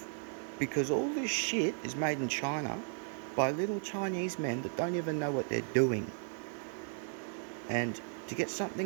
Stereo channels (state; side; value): silent; left; 54 dB below the other